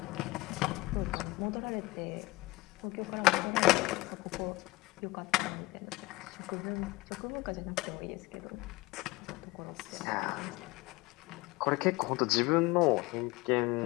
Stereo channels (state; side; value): quieter; right; 21.1 dB